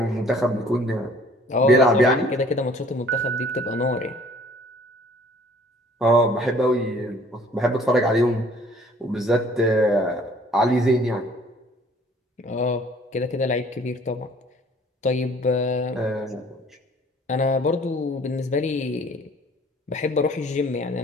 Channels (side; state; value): both; normal; correlation 0.55